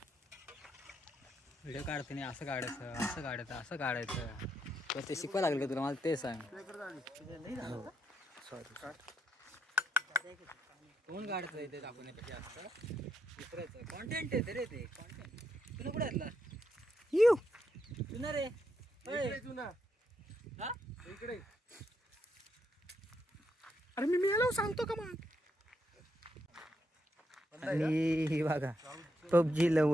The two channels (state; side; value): normal; both; correlation 0.79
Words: व्हिडिओ काढते नाही असं काढायचं असं काढायचं असं काढायचं. ते शिकवायला लागलं तुला, मला ते सांग. सॉरी कोण काढतं ते दाखवण्यापेक्षा असतं दुसऱ्याचं कॉन्टेंट आहे रे. ते कॉन्टेंट तुला कुठे घातला येऊ तुला रे. हा इकडे. अरे मी याला सांगतो का मग. आणि हे बघा पबजी